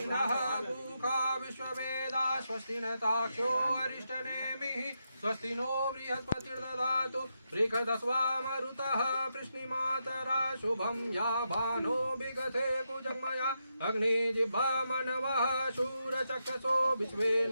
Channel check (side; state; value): both; inverted; correlation -0.84